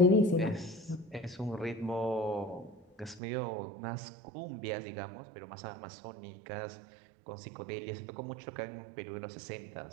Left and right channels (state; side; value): drops out; left; at 3.2 s